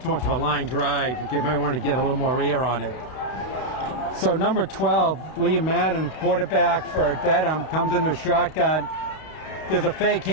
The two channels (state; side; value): late; right; 32 ms